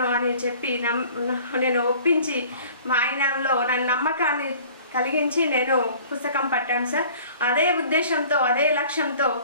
అని చెప్పి నేను ఒప్పించి మా ఆయనలో నా నమ్మకాన్ని కలిగించి నేను పుస్తకం పట్టాను సార్. అదే ఉద్దేశంతో అదే లక్ష్యంతో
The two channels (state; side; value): inverted; both; correlation -0.49